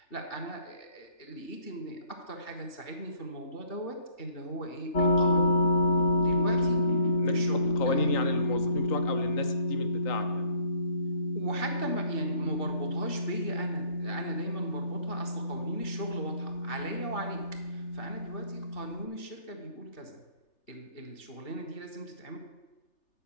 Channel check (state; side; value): late; right; 3.4 ms